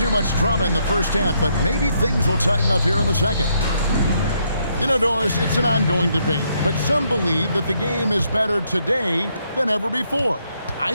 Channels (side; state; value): both; inverted; correlation -0.74